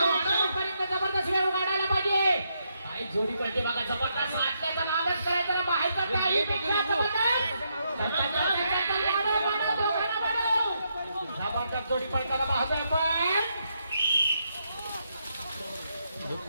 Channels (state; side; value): inverted; both; correlation -0.79